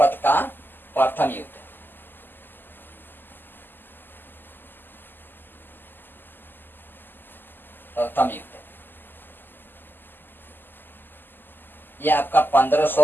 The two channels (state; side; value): late; right; 0.092 ms